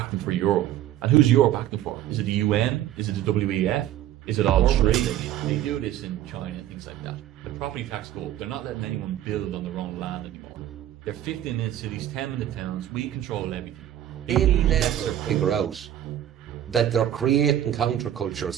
for Europe. And who's Europe acting for? Is it the UN? Is it the WEF? Is it all three? They do this in China and things like that. The property tax go up. They're not letting anyone build on their own land anymore. They're 15-minute cities, 10-minute towns. We control everything. they'll never figure out that they're creating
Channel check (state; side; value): quieter; left; 11.9 dB